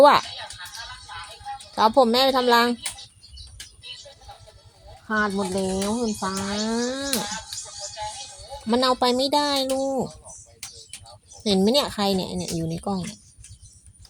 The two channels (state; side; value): identical; both; correlation 1.00